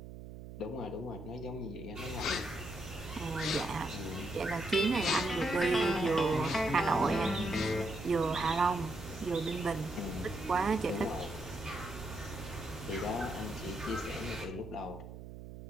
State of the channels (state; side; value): noise; right; hum, 12 dB below the sound